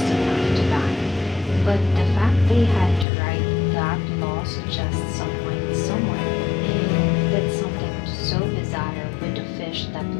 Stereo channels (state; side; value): drops out; right; at 3.1 s